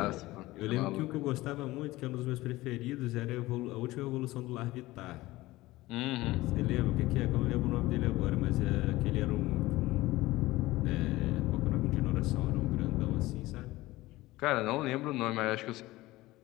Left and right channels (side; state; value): right; quieter; 18.5 dB